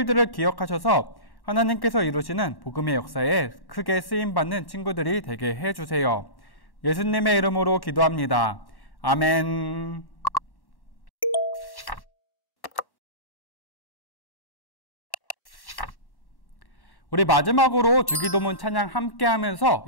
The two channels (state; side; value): late; right; 1.1 ms